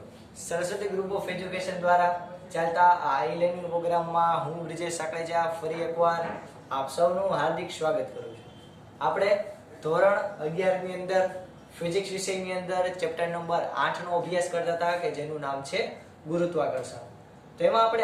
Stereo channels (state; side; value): identical; both; correlation 1.00